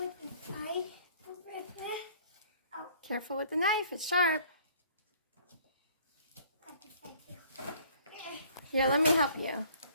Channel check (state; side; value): inverted; both; correlation -0.56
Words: inside? Oh. Careful with the knife. It's sharp. Got this side too. Here, let me help you.